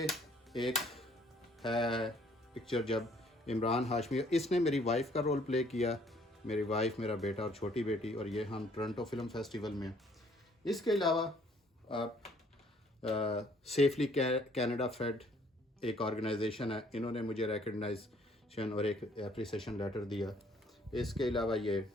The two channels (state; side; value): normal; both; correlation 0.62